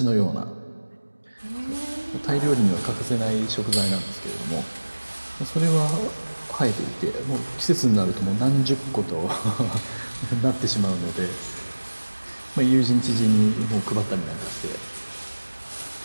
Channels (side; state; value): both; inverted; correlation -1.00